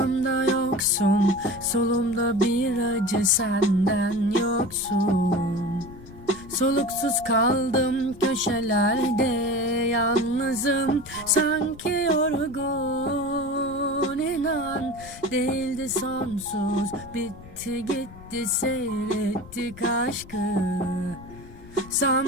yoksun. Solumda bir acı, senden yoksun. Soluksuz kaldım köşelerde, yalnızım sanki yorgun. İnan değildi sonsuz, bitti gitti, seyrettik aşkı.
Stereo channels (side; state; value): left; noise; rumble, 18 dB below the sound